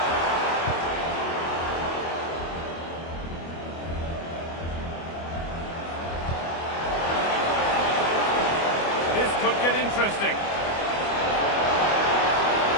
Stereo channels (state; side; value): late; right; 25 ms